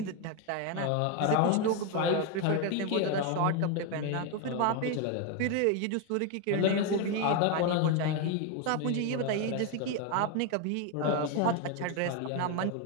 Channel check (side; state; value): both; different; correlation 0.02